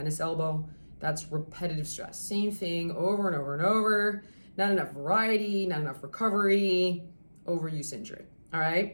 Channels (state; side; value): inverted; both; correlation -1.00